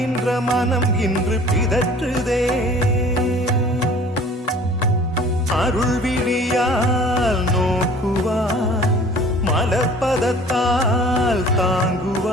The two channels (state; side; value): normal; both; correlation 0.49